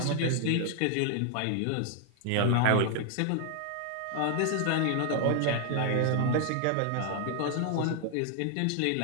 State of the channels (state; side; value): different; both; correlation 0.00